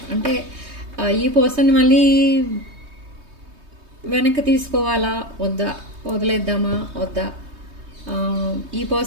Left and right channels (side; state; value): left; late; 3.2 ms